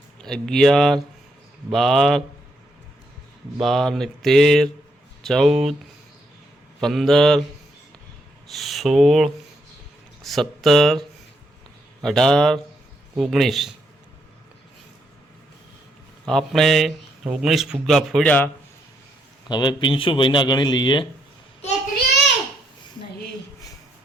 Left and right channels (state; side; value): normal; both; correlation 0.76